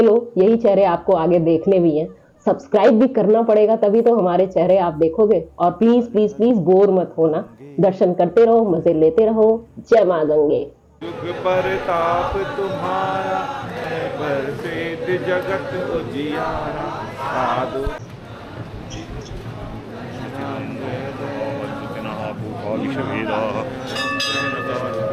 लो, यही चेहरे आपको आगे देखने भी हैं। सब्सक्राइब भी करना पड़ेगा, तभी तो हमारे चेहरे आप देखोगे। और प्लीज प्लीज प्लीज बोर मत होना, दर्शन करते रहो, मजे लेते रहो। जय माँ गंगे। युग परताप तुम्हारा है, बरसेत जगत उजियारा। साधु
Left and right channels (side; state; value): both; identical; correlation 1.00